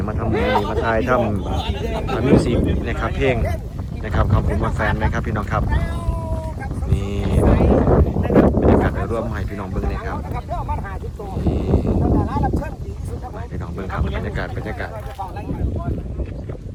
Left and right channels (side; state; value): both; identical; correlation 1.00